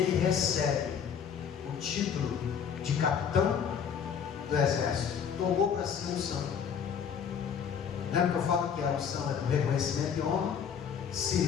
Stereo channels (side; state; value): right; quieter; 7.5 dB